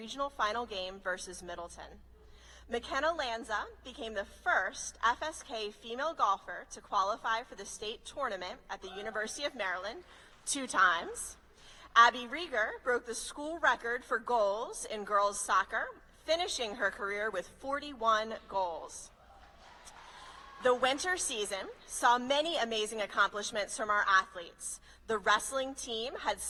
final game versus Middleton. McKenna Lanza became the first FSK female golfer to qualify for the state tournament at the University of Maryland 2 times. Abby Rieger broke the school record for goals in girls soccer, finishing her career with 41 goals. The winter season saw many amazing accomplishments from our athletes. The wrestling team had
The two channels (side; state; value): both; identical; correlation 1.00